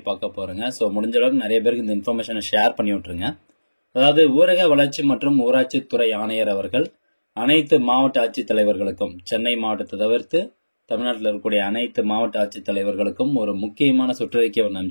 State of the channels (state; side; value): inverted; both; correlation -1.00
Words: பார்க்க போகிறோங்க. ஸோ முடிஞ்ச அளவுக்கு நிறைய பேருக்கு இந்த இன்ஃபர்மேஷனை ஷேர் பண்ணி விட்ருங்க. அதாவது ஊரக வளர்ச்சி மற்றும் ஊராட்சித்துறை ஆணையர் அவர்கள் அனைத்து மாவட்ட ஆட்சித்தலைவர்களுக்கும், சென்னை மாவட்டத்தை தவிர்த்து தமிழ்நாட்டில் இருக்கக்கூடிய அனைத்து மாவட்ட ஆட்சித்தலைவர்களுக்கும் ஒரு முக்கியமான சுற்றறிக்கை ஒன்று